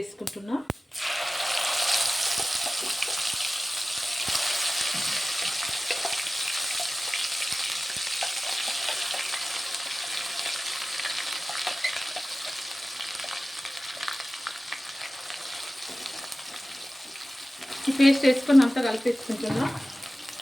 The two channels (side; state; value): both; normal; correlation 0.96